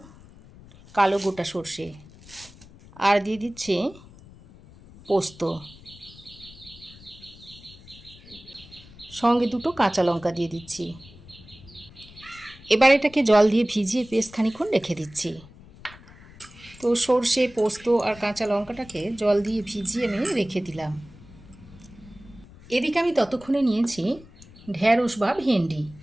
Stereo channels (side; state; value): left; noise; rumble, 21 dB below the sound